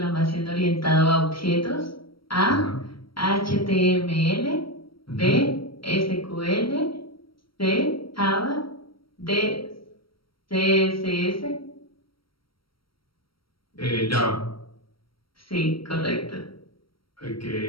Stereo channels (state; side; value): late; right; 0.74 ms